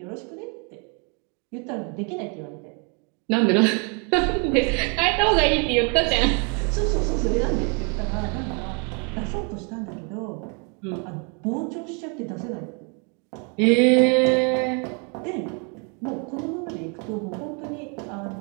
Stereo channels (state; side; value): quieter; left; 36.3 dB